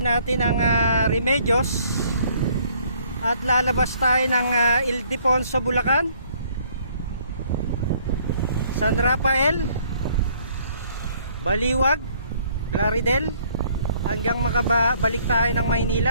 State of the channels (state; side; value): inverted; both; correlation -0.62